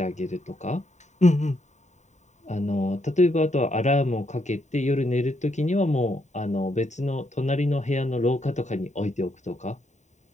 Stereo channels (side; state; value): right; late; 0.34 ms